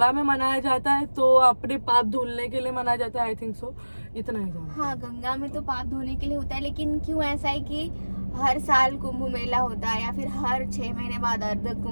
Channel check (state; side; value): inverted; both; correlation -1.00